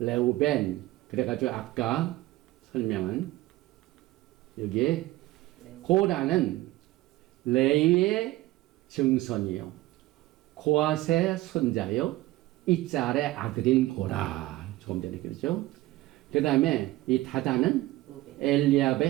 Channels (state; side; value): quieter; left; 17.4 dB